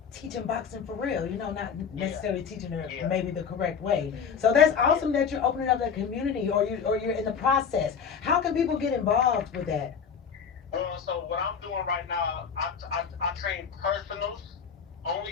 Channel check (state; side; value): quieter; right; 6.7 dB